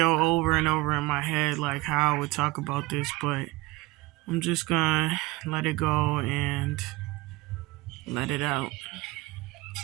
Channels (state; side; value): quieter; left; 21.1 dB